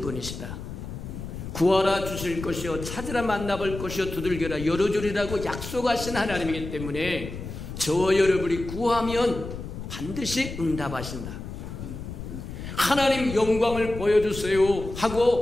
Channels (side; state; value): left; noise; rumble, 9 dB below the sound